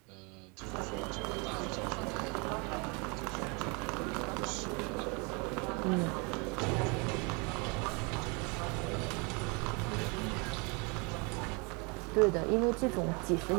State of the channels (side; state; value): left; quieter; 31.3 dB